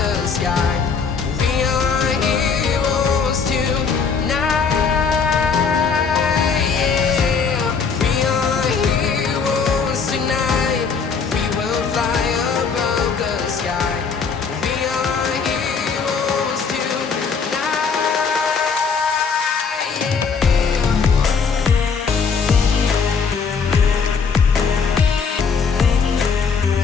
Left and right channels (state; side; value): quieter; right; 5.6 dB